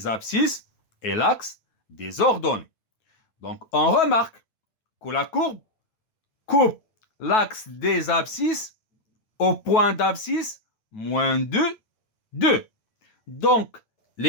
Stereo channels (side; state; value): right; late; 9.3 ms